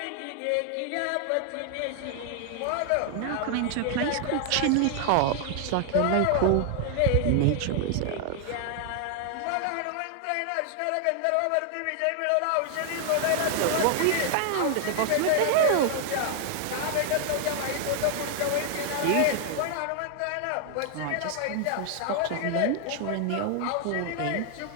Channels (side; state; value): both; different; correlation 0.00